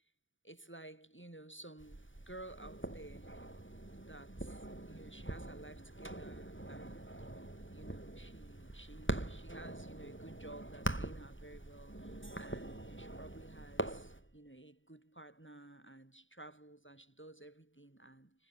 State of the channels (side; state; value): right; late; 0.56 ms